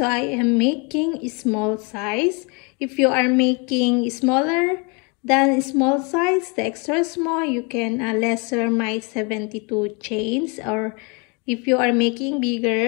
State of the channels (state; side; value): quieter; right; 31.8 dB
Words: I am making a small size. If you are making smaller than small size, the extra small, you can lesser my 72 chains. Or if you are making